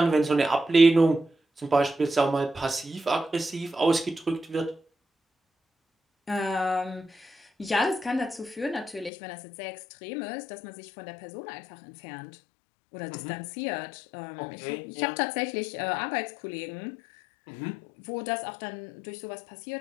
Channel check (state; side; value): drops out; right; at 9.1 s